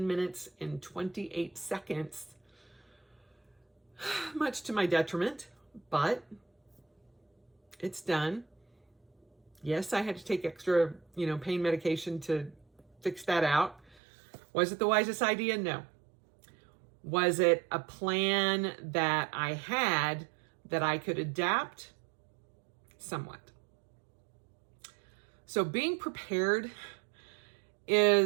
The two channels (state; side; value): drops out; left; at 14.0 s